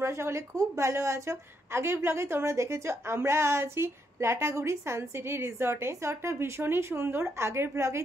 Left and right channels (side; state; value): both; normal; correlation 0.77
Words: সকলে খুব ভালো আছো। আগের ব্লগে তোমরা দেখেছো আমরা আছি লাটাগুড়ি সানসিটি রিসর্টে। রিসর্টটা ভীষণই সুন্দর। আগের ব্লগেই